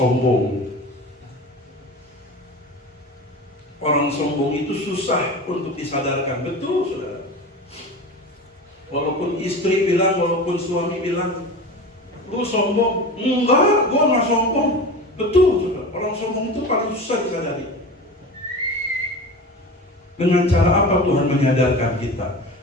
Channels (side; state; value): both; normal; correlation 0.31